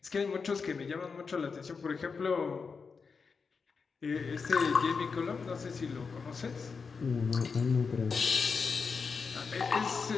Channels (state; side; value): quieter; right; 5.2 dB